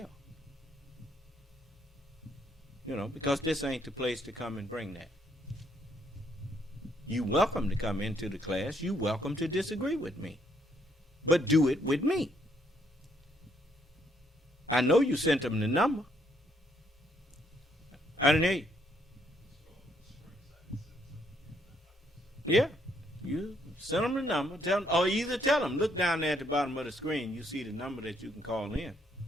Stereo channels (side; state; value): both; normal; correlation 0.71